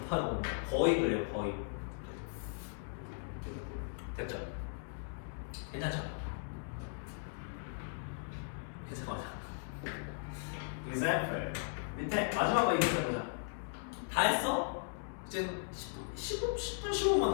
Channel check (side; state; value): right; silent; digital silence